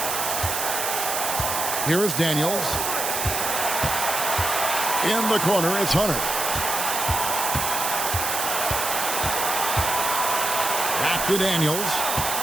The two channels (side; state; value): right; noise; hiss, 1 dB below the sound